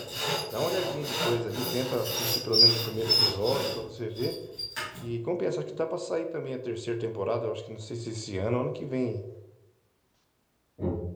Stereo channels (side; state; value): both; identical; correlation 1.00